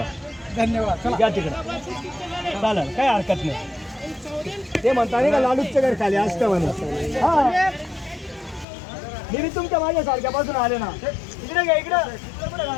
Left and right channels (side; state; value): right; drops out; at 8.7 s